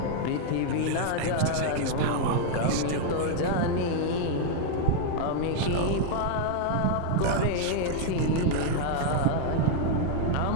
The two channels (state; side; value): different; both; correlation 0.00